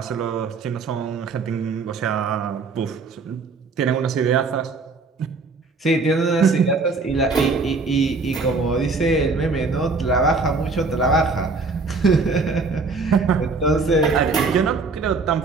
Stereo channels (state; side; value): quieter; left; 4.0 dB